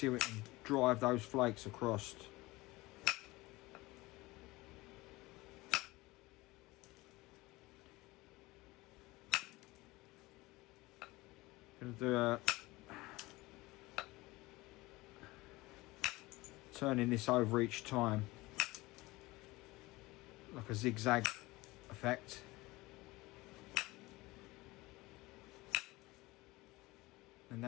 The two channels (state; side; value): quieter; right; 20.8 dB